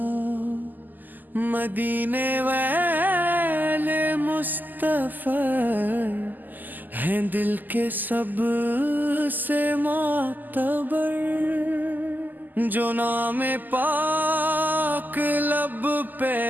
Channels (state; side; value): late; left; 0.086 ms